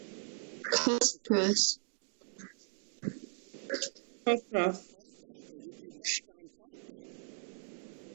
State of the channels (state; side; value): silent; left; 53 dB below the other